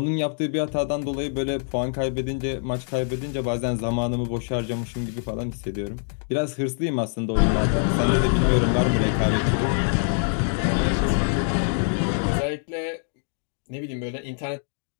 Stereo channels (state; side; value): silent; right; digital silence